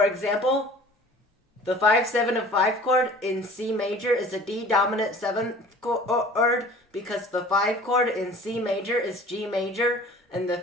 example, the 5, 7 of 5 chord in C major is a D dominant 7th chord because the 5 chord in C major is G major and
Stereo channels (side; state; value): both; normal; correlation 0.46